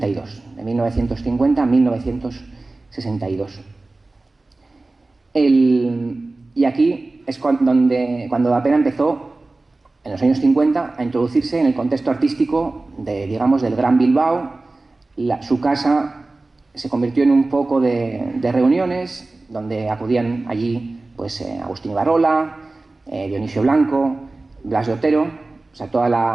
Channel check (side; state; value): left; quieter; 3.2 dB